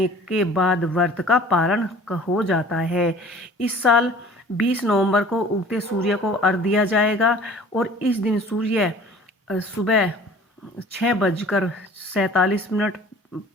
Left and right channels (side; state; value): both; normal; correlation 0.48